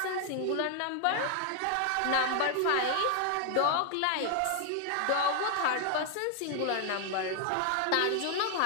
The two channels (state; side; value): different; both; correlation 0.00